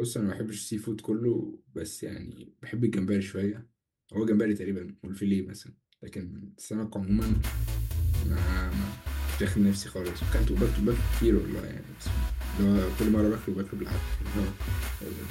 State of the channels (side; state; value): both; identical; correlation 1.00